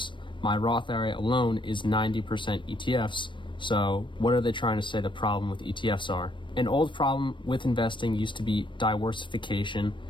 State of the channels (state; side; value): late; right; 0.23 ms